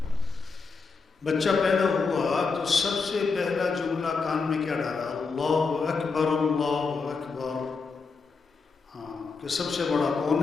بچہ پیدا ہوا تو سب سے پہلا جملہ کان میں کیا ڈالا؟ اللہ اکبر، اللہ اکبر۔ ہاں، کہ سب سے بڑا کون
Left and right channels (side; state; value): right; quieter; 4.7 dB